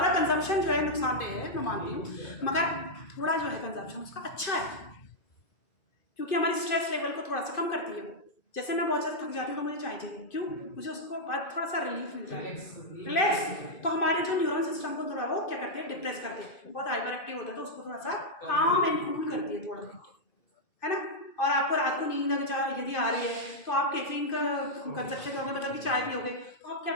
कंजम्पशन जो है नुकसानदेह है, मैं मानती हूँ, मगर थोड़ा जो है कंजम्पशन उसका अच्छा है, क्योंकि हमारी स्ट्रेस लेवल को थोड़ा सा कम करती है वो। जैसे मैं बहुत ज़्यादा थक जाती हूँ तो मुझे चाय चाहिए, क्यों? मुझे उसको बाद थोड़ा सा रिलीफ मिलता है, रिलैक्स। तो हमारे जो न्यूरल सिस्टम को थोड़ा वो क्या करती है? डिप्रेस करती है। बहुत हाइपर एक्टिव होता है तो उसको थोड़ा सा काम एंड कूल करती है थोड़ा, है ना। और आपको रात को नींद अगर यदि आ रही है तो आप कैफीन का कंजप्शन करोगे, मतलब कि चाय पियोगे, तो आप क्या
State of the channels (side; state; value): right; late; 2.5 ms